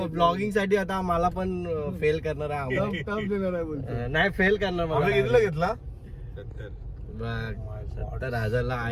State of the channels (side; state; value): both; identical; correlation 1.00